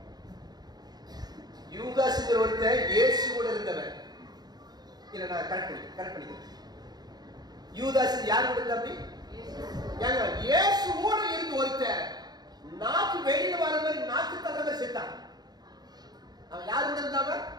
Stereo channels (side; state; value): left; late; 0.20 ms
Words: யூதாஸ்ங்கிற ஒருத்தன் இயேசு கூட இருந்தவன். இல்ல நான் கரெக்ட் பண்ணிக்கிறேன். யூதாஸ் யார் கூட இருந்தா? அப்படி ஏங்க இயேசு கூட இருந்து ஒருத்தன் நாக்கு வெளியில வர மாதிரி நாக்கு தகவ செத்தான். அவன் யார் கூட இருந்தவன்?